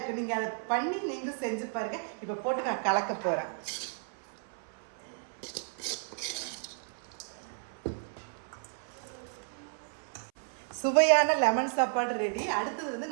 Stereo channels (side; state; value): left; silent; 56 dB below the other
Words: நீங்கள் அதை பண்ணி நீங்களும் செஞ்சு பாருங்கள். இப்போ போட்டு நான் கலக்க போகிறேன். சுவையான லெமன் சாப்பாடு ரெடி. அடுத்தது